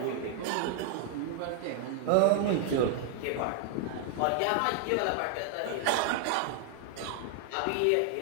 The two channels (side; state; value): both; different; correlation 0.00